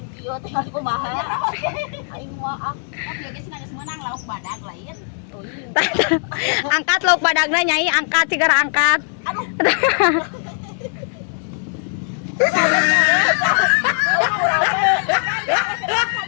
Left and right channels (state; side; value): silent; right; 60 dB below the other